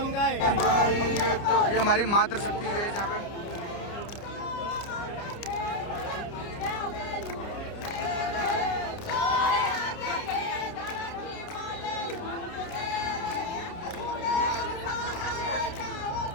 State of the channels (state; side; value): late; right; 29 ms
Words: तो ये हमारी मातृ शक्ति है यहाँ पे।